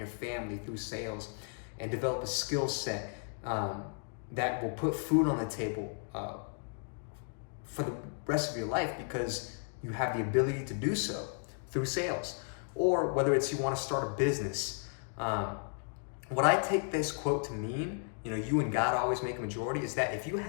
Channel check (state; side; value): silent; right; 55 dB below the other